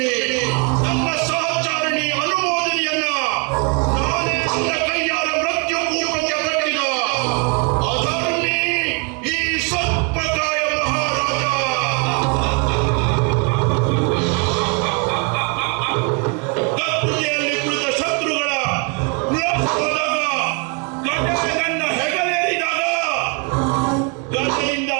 ನನ್ನ ಸಹಚಾರಿಣಿ ಅನುಮೋದನೆಯನ್ನ ನಾನೇ ನನ್ನ ಕೈಯಾರ ಮೃತ್ಯು ಕೂಪಕ್ಕೆ ಕಟ್ಟಿದ ಅಧರ್ಮಿ ಈ ಸರ್ಪಕಾಯ ಮಹಾರಾಜ. ಕತ್ತುಗೆಯಲ್ಲಿ ಕುಳಿತ ಶತ್ರುಗಳ ವಿಳಾಸವಾದಾಗ, ಗಡ್ಡೆ ನನ್ನ ಹೆಗಲೇರಿದಾಗ, ಗದರಿಂದ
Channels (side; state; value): left; quieter; 33.6 dB